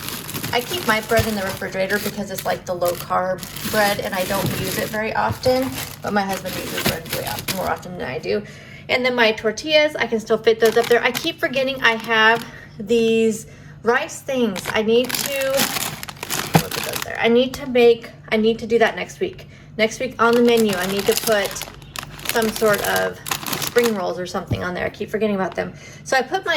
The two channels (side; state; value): both; identical; correlation 1.00